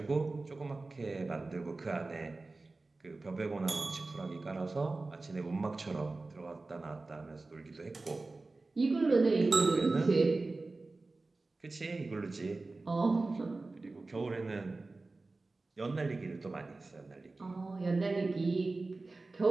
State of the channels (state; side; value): quieter; left; 3.4 dB